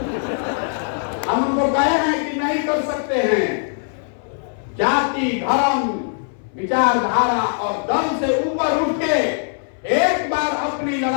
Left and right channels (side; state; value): right; silent; 60 dB below the other